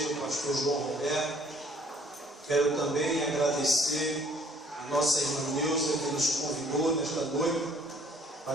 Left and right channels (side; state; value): both; normal; correlation 0.59